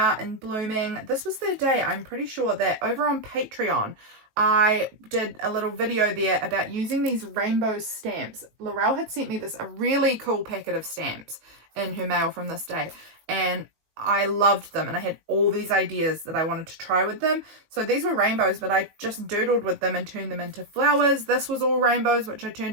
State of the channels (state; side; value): late; left; 18 ms